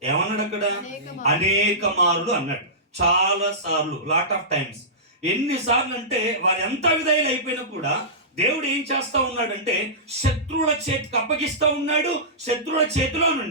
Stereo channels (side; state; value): both; normal; correlation -0.19